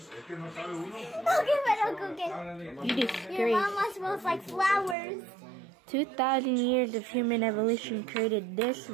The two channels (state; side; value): drops out; left; at 5.0 s